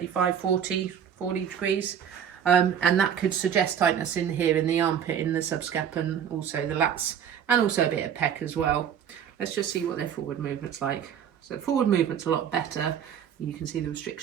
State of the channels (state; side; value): quieter; left; 8.5 dB